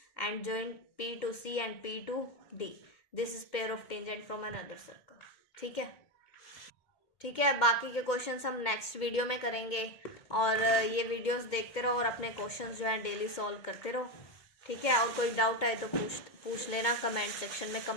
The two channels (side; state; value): right; late; 2.3 ms